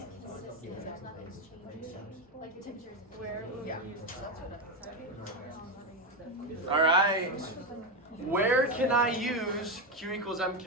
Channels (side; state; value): both; normal; correlation 0.11